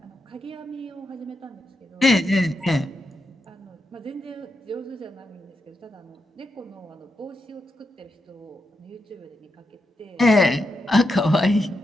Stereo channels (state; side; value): normal; both; correlation 0.85